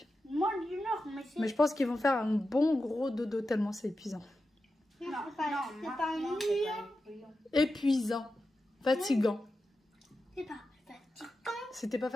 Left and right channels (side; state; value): both; normal; correlation 0.91